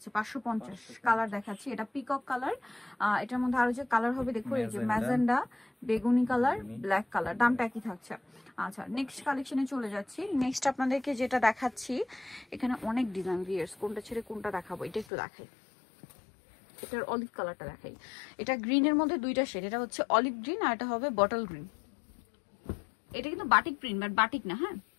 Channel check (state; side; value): drops out; right; at 15.1 s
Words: 550। কালার দেখাচ্ছি, এটা পিকক কালার। এটার মধ্যে আরো যে কালার হবে দেখো, এই যে ম্যাজেন্ডা, বেগুনি কালার, ব্ল্যাক কালার। দামটা একই থাকছে। আচ্ছা, নেক্সট কালেকশনে চলে যাচ্ছি। নেক্সট আপনাদেরকে যেটা দেখাচ্ছি, এখানে অনেক ডিজাইন, ভিউয়ার্স কোনটা ছেড়ে কোনটা দেখাবো, এটা একটু দেখাই। এটার অলিভ কালারটা দেখাই। এটা গ্রিনের মধ্যে দুইটা শেড, এটা হচ্ছে অলিভ গ্রিন আর এটা হবে বটল গ্রিন। এটা কিন্তু বাটিক প্রিন্ট, বাট বাটিক না। হ্যাঁ,